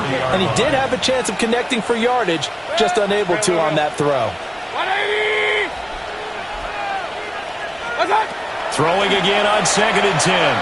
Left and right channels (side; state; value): both; identical; correlation 1.00